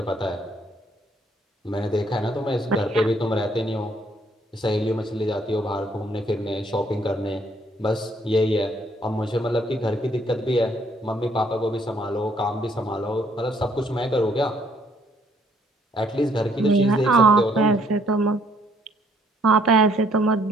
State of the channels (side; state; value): both; normal; correlation 0.66